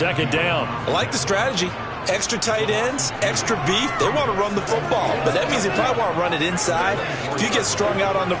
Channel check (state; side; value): identical; both; correlation 1.00